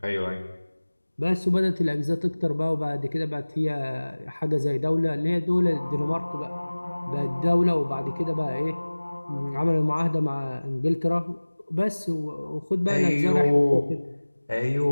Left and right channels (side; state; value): both; inverted; correlation -1.00